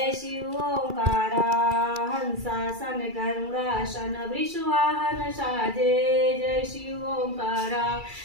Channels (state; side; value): late; left; 2.3 ms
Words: शिव ओंकारा हंसासन गरुड़ासन वृषवाहन साजे जय शिव ओंकारा